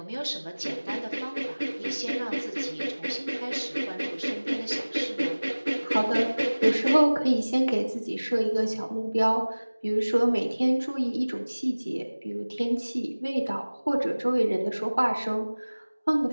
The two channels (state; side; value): inverted; both; correlation -1.00